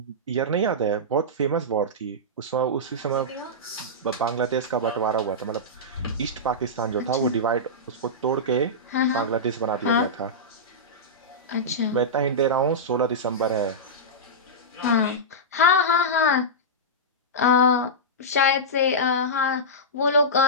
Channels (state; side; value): normal; both; correlation -0.13